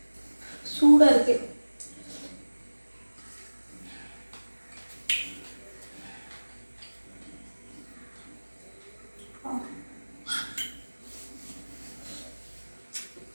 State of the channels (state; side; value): inverted; both; correlation -1.00